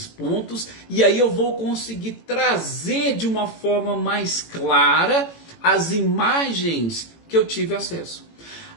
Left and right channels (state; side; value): late; right; 18 ms